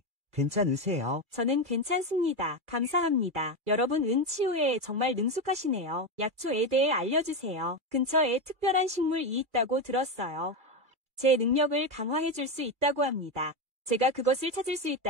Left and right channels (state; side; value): late; left; 2.3 ms